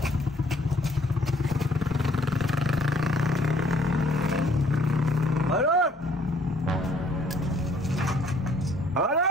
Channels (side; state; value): both; normal; correlation 0.63